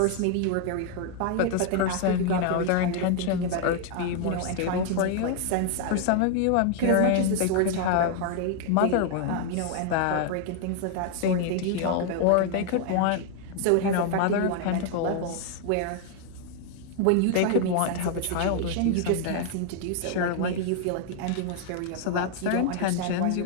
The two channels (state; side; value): different; both; correlation 0.00